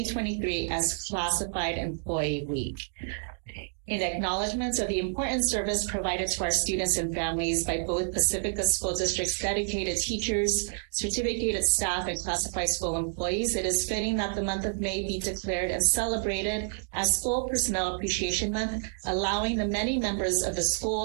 as Classified Employee Week. In acknowledgments of the important service provided to our students and families by both Pacifica School District's dedicated teachers, certificated staff, and classified school employees, it is fitting that the month of May be declared and celebrated as School Personnel Appreciation Month, allowing the many members of the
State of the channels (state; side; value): silent; left; digital silence